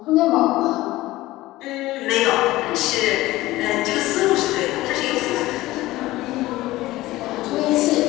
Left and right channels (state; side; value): quieter; right; 17.6 dB